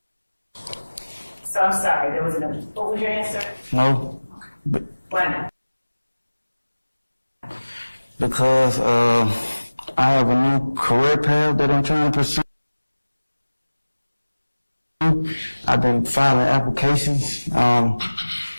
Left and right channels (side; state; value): both; inverted; correlation -1.00